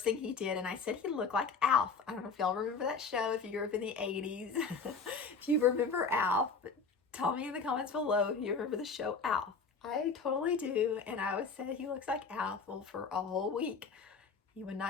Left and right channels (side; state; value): right; quieter; 4.8 dB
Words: thing he did, and I said he looked like Alf. I don't know if y'all remember that show, if you grew up in the 80s. If you remember Alf, tell me in the comments below if you remember the show Alf. I totally do, and I always said he looks like Alf. Well, for a whole week, he would